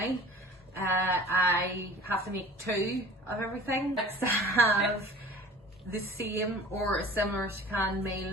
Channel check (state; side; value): normal; both; correlation 0.43